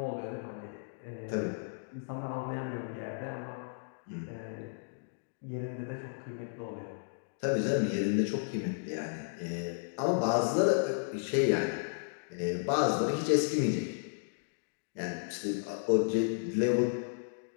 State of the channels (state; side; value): silent; right; digital silence